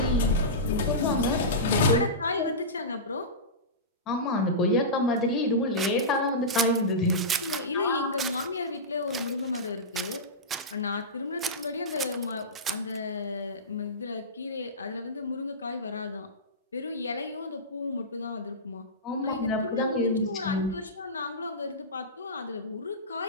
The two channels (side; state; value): both; normal; correlation -0.17